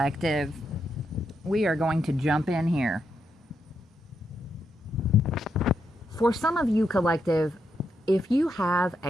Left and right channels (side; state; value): both; normal; correlation 0.81